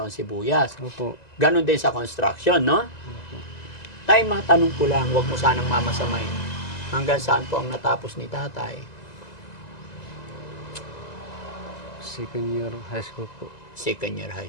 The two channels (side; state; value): right; late; 1.9 ms